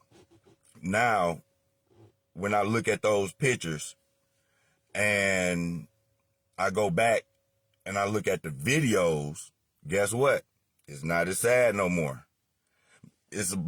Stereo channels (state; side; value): identical; both; correlation 1.00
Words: now when I look at those pictures and I go back and I look at the videos, guess what? It's not as sad no more. It's